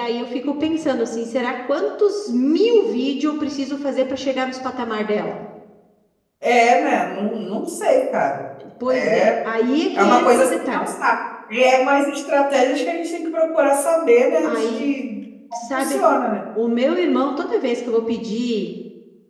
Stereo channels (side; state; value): both; identical; correlation 1.00